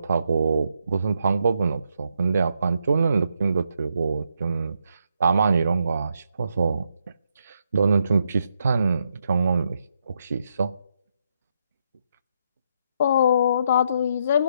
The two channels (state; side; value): inverted; both; correlation -0.78